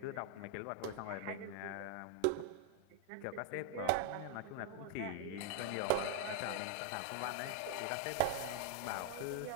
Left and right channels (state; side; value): different; both; correlation 0.00